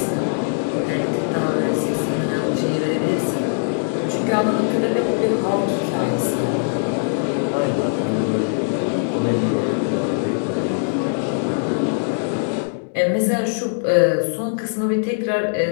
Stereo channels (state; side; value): silent; right; digital silence